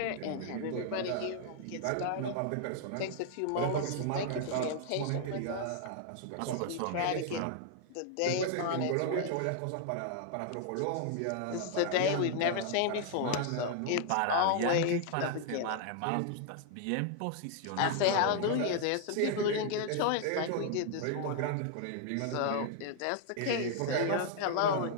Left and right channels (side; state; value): both; different; correlation 0.00